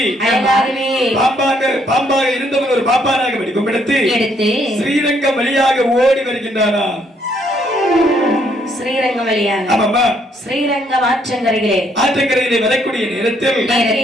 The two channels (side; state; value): both; normal; correlation 0.69